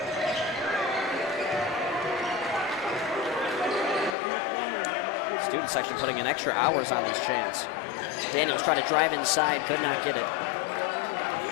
Student section putting in extra hours on this chance. Daniels trying to drive inside, could not get it.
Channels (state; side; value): drops out; right; at 4.2 s